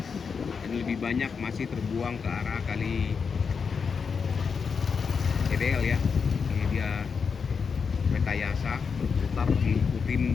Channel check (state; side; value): quieter; right; 5.8 dB